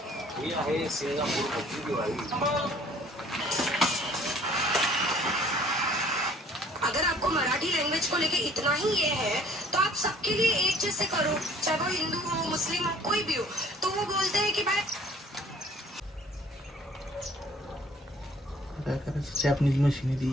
अगर आपको मराठी लैंग्वेज को लेके इतना ही ये है तो आप सबके लिए एक जैसे करो, चाहे वो हिंदू हो मुस्लिम हो कोई भी हो. तो वो बोलते हैं कि भाई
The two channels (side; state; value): both; normal; correlation 0.55